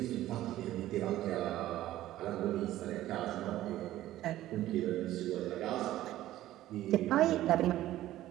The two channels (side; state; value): left; quieter; 14.4 dB